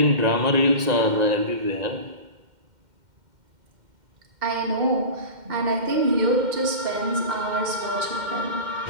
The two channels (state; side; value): late; left; 2.1 ms